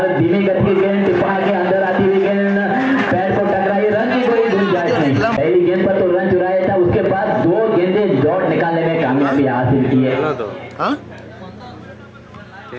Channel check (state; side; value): identical; both; correlation 1.00